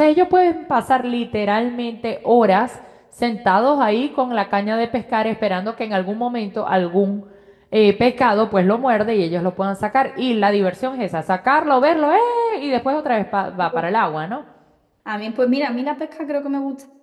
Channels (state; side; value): identical; both; correlation 1.00